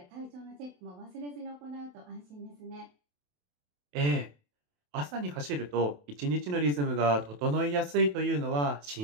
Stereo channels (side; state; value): left; late; 28 ms